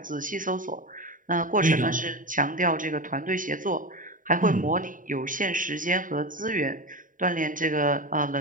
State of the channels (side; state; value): left; late; 0.39 ms